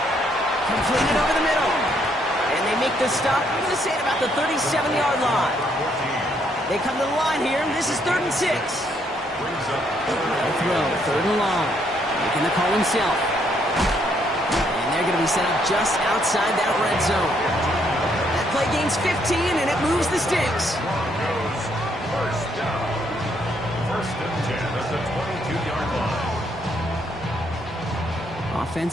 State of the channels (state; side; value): normal; both; correlation 0.71